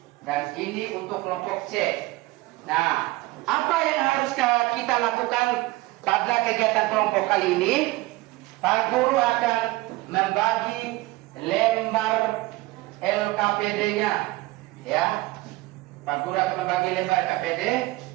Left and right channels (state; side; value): quieter; left; 20.3 dB